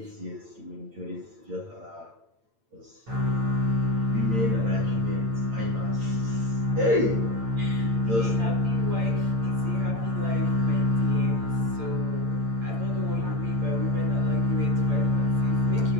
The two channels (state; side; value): late; left; 8.8 ms